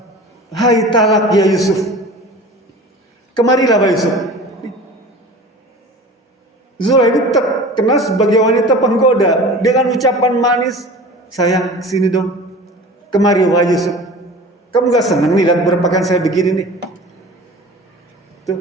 hai talak ya Yusuf. Kemarilah Pak Yusuf. Zulaikha ini terkenal sebagai wanita penggoda dengan ucapan manis, sayang sini dong, kemari Pak Yusuf. Kamu gak senang nih lihat berpakaian saya begini nih?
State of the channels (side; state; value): both; normal; correlation 0.39